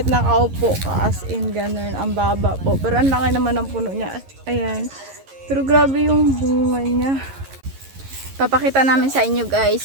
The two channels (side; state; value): left; late; 11 ms